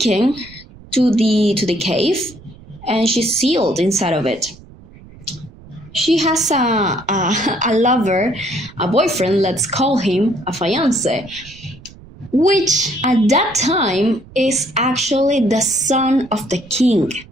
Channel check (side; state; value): right; noise; rumble, 21 dB below the sound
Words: to the cave, and she's sealed inside of it. She has a lover, a boyfriend, let's call him a fiancé, which at that time is actually the son of the king,